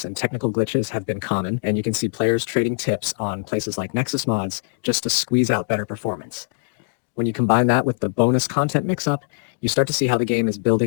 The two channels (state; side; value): silent; right; 64 dB below the other